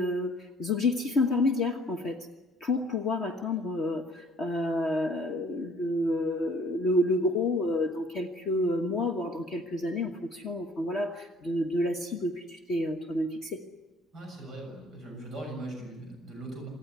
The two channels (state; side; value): normal; both; correlation 0.56